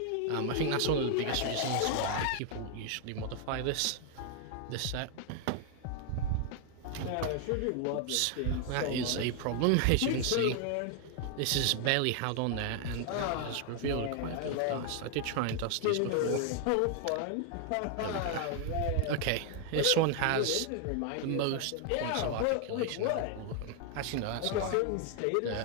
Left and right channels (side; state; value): both; different; correlation 0.00